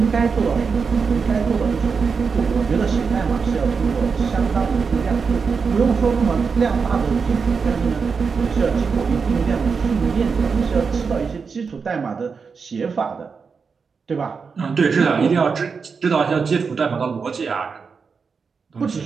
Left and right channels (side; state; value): left; quieter; 5.4 dB